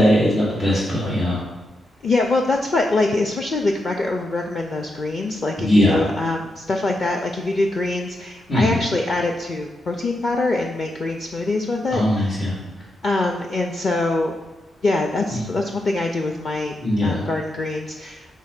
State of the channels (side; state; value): both; normal; correlation 0.84